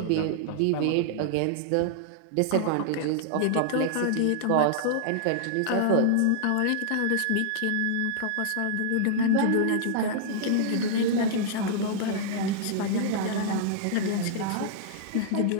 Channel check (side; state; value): both; different; correlation -0.01